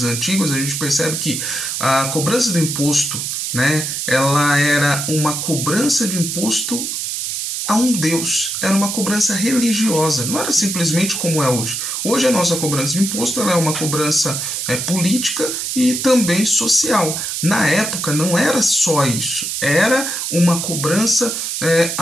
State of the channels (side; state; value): right; noise; hiss, 3 dB below the sound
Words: antigos, a gente percebe que a cobrança do imposto, né, ela era uma cobrança de imposto a um Deus, era uma cobrança religiosa, não era simplesmente como é hoje. Hoje a nossa cobrança de imposto ela é uma cobrança política e também social. Na época não era só isso, era uma cobrança